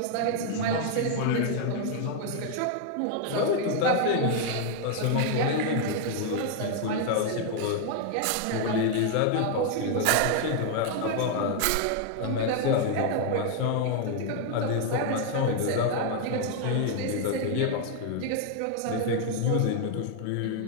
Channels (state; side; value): different; both; correlation 0.00